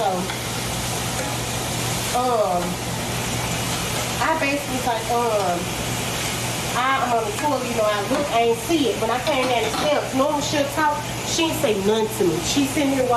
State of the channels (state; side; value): identical; both; correlation 1.00